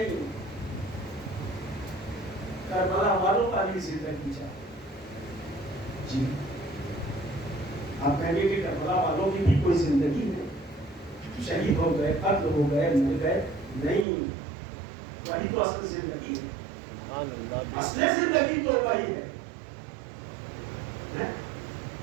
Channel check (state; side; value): drops out; left; at 14.1 s